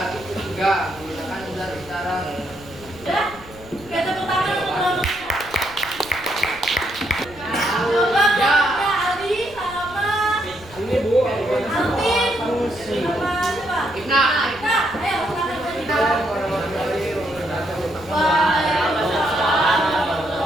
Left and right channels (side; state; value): left; noise; rumble, 20 dB below the sound